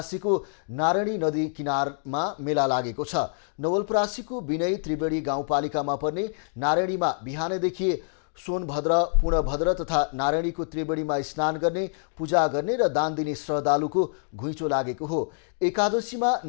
नारायणी नदी किनारमा मेला लागेको छ। नवलपरासीको विनय त्रिवेणी गाउँपालिकामा पर्ने नारायणीमा बिहानैदेखि सोनभद्र, पूर्णभद्र तथा नारायणीको त्रिवेणीमा स्नान गर्ने, पूजा गर्ने र दान दिने श्रद्धालुको घुइँचो लागेको हो। एकादशीमा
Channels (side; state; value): right; silent; digital silence